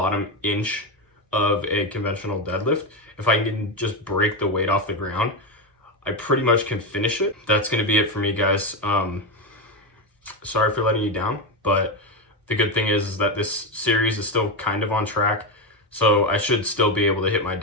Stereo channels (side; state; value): both; normal; correlation 0.11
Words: inch of a conventional deadlift. If I can just break the weight off the ground, I pretty much can finish it. That's gonna be it for me, guys. Sorry for letting you down, but the good thing is that this series is still kind of on track, so I should still be able to hit my